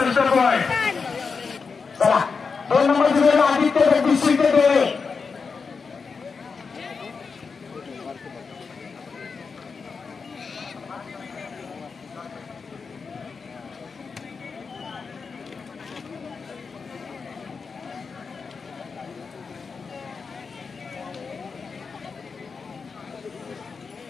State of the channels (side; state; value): right; quieter; 5.1 dB